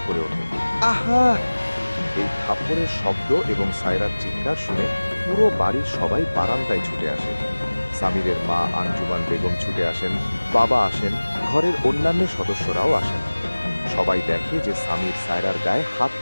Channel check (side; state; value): both; inverted; correlation -1.00